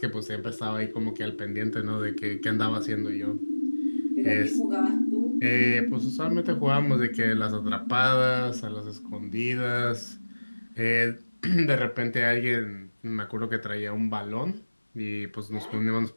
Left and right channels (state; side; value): inverted; both; correlation -1.00